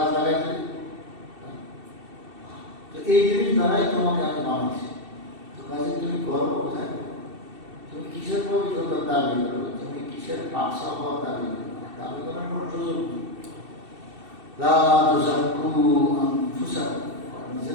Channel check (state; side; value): late; left; 2.7 ms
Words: লাগাইছে। তো এই জিনিস দ্বারাই তোমাকে আমি বানাচ্ছি। তো কাজে তুমি করো কোথায়, তুমি কিসের পবিত্রতার দাবি করো, তুমি কিসের পাকসা হওয়ার দাবি করো, দাবি করার কোনো সুযোগ নেই। লা তুযাক্কু আনফুসাকুম,